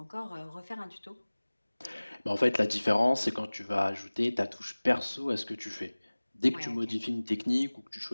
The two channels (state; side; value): inverted; both; correlation -1.00